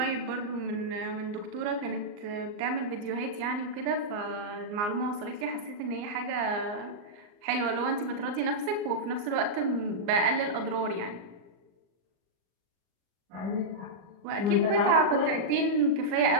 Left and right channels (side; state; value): left; late; 39 ms